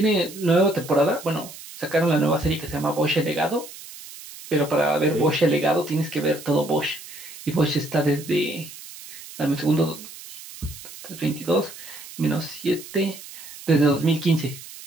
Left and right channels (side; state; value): right; noise; hiss, 15 dB below the sound